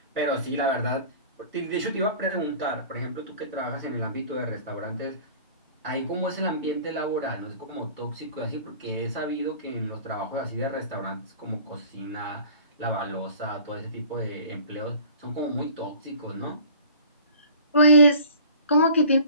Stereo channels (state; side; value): inverted; both; correlation -0.45